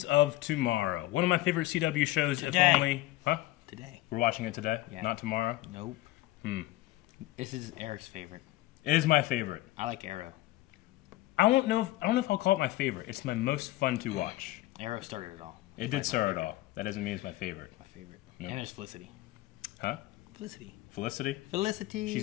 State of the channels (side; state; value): right; quieter; 17.1 dB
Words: of Tomorrow. One of my favorite CW shows, Today. if only... Huh? Today. We're watching it today? Yeah. Not tomorrow? Nope. This is Eric's favorite. It is my favorite. I like Arrow. I don't know if I'll call it my favorite. It's my most fun to watch. Arrow started it all. It did start it all. That doesn't mean it's my favorite. My favorite. No. And there's Felicity. Huh? Felicity. Felicity? Felicity.